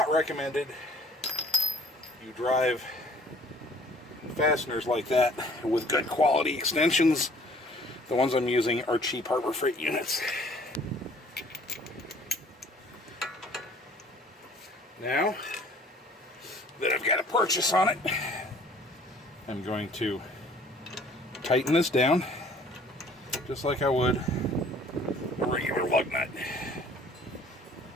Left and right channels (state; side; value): normal; both; correlation 0.54